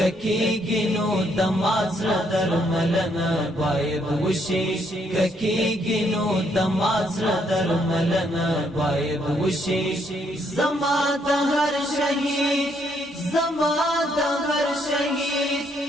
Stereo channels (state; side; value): normal; both; correlation 0.72